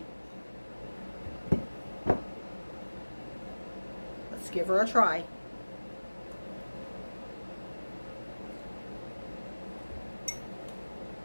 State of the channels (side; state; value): both; inverted; correlation -1.00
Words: Let's give her a try.